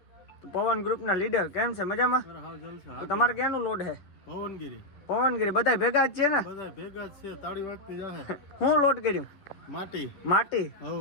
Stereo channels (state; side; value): late; right; 10 ms